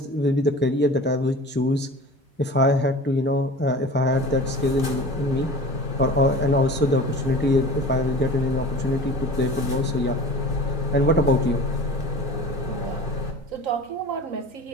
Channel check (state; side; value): normal; both; correlation 0.38